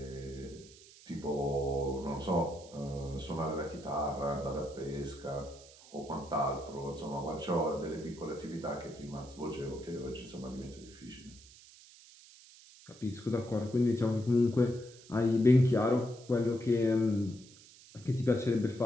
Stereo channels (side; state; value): right; noise; hiss, 21 dB below the sound